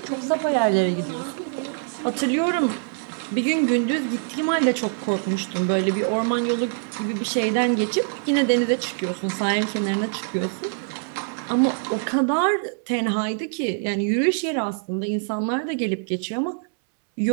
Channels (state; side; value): silent; left; 63 dB below the other